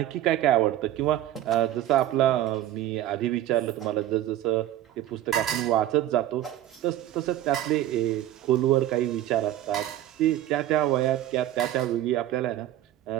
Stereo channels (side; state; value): left; quieter; 13.1 dB